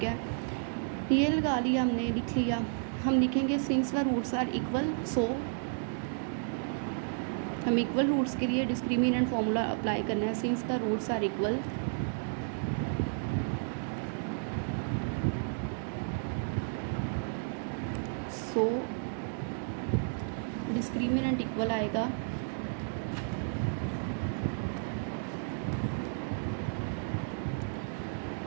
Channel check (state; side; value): silent; left; digital silence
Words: है, ये लगा लिया हमने, लिख लिया। हम लिखेंगे since the roots are equal, so हम इक्वल रूट्स के लिए डिस्क्रिमिनेंट फॉर्मूला अप्लाई करना है। Since the roots are equal, so discriminant equal आएगा